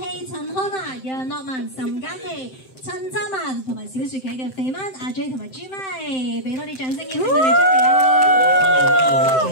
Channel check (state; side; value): late; right; 7.7 ms